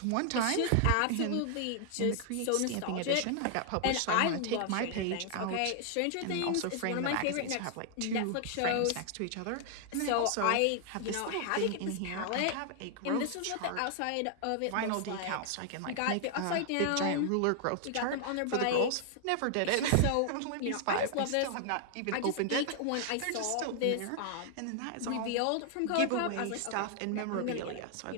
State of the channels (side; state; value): both; different; correlation 0.00